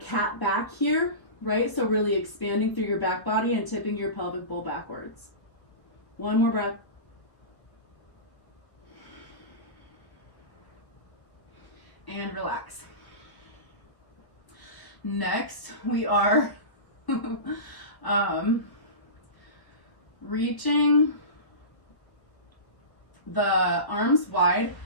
back here, right? So really expanding through your back body and tipping your pelvic bowl backwards. One more breath. And relax. Next, we are reaching the arms wide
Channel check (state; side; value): late; right; 1.3 ms